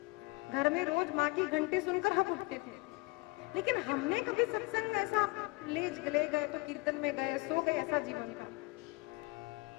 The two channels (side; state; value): right; quieter; 24.7 dB